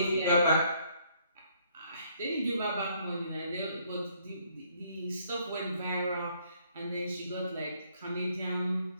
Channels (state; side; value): inverted; both; correlation -0.66